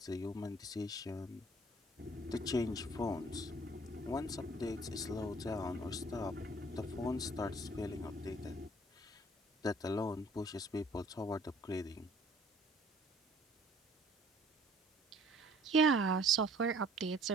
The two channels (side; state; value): both; normal; correlation 0.56